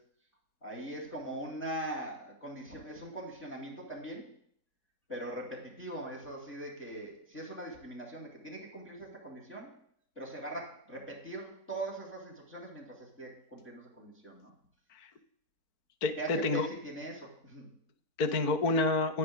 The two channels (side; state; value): right; late; 4.4 ms